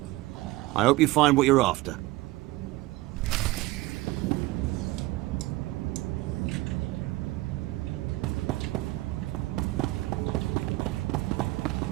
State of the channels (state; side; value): quieter; left; 19.3 dB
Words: I hope you find what you're after.